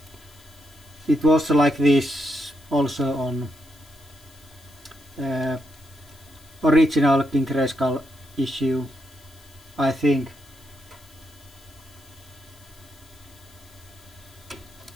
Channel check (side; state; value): left; noise; hiss, 26 dB below the sound